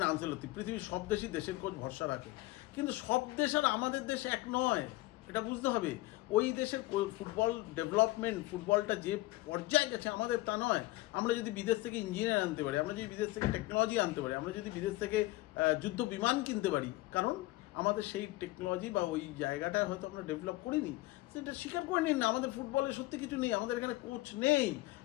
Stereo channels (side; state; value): right; quieter; 19.0 dB